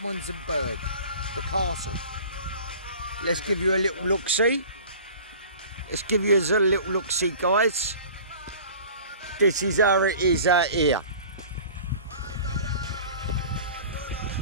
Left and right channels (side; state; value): both; inverted; correlation -0.43